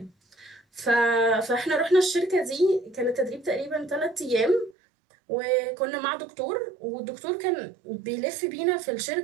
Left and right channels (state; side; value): drops out; left; at 4.8 s